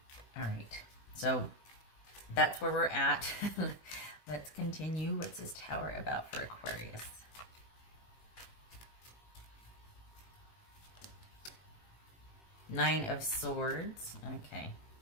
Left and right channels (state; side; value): late; right; 18 ms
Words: All right, so that's where we're at. Let's continue. What's this Tower about for Aquarius? Nine of Swords. Okay.